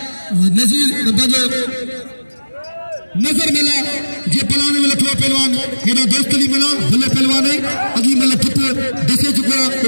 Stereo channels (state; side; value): inverted; both; correlation -1.00